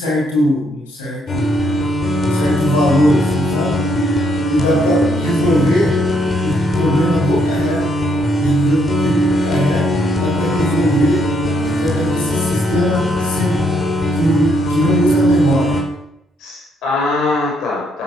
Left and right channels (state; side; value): normal; both; correlation 0.73